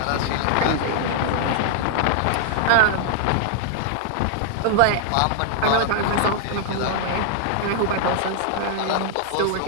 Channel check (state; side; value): different; both; correlation 0.00